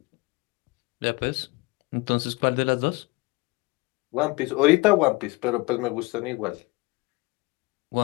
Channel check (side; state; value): right; quieter; 24.3 dB